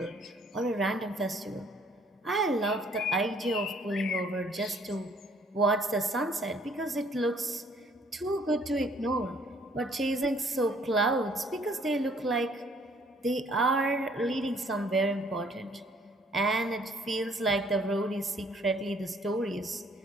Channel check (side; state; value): both; normal; correlation 0.61